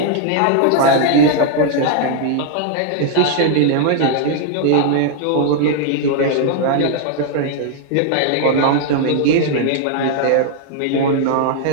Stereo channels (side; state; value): both; different; correlation -0.01